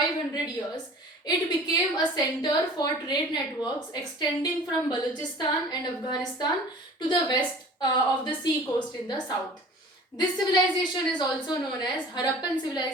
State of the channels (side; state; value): both; normal; correlation 0.44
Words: years. It became a center for trade networks extending from Balochistan and Afghanistan to the west of the sea coast in the south. This civilization is also known as Harappan